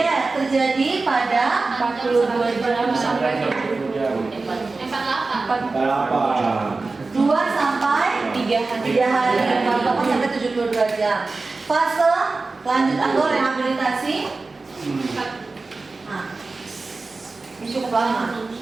terjadi pada 42 jam sampai 48. 8. 2 sampai 3 hari 48 sampai 72 jam. Fase lanjut atau rehabilitasi. Nah, ini cukup lama.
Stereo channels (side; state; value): left; quieter; 3.7 dB